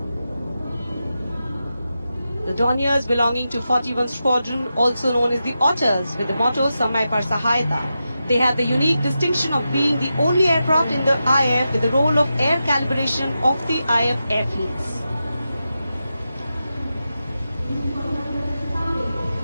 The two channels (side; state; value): both; inverted; correlation -0.90